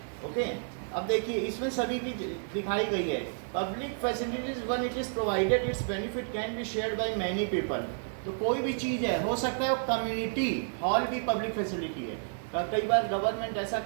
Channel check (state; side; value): silent; left; digital silence